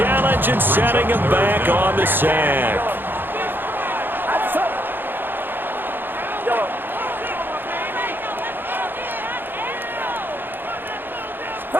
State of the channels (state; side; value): late; left; 0.097 ms